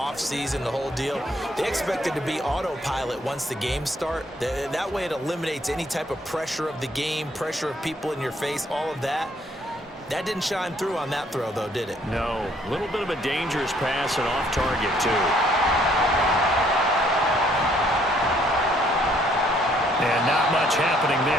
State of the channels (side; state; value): both; normal; correlation 0.65